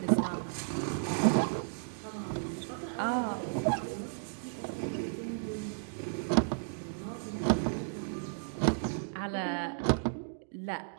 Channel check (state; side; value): silent; left; digital silence